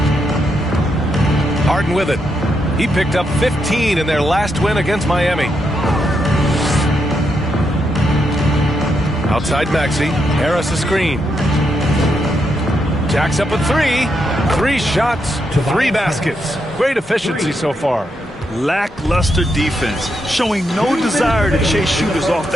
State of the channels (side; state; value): both; normal; correlation 0.81